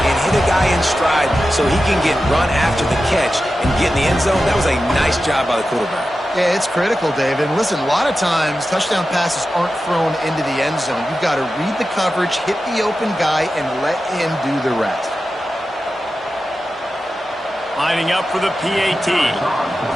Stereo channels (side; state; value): both; normal; correlation 0.92